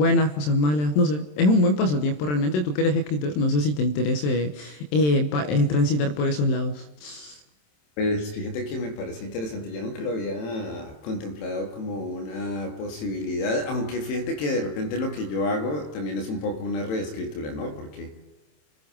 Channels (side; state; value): right; late; 27 ms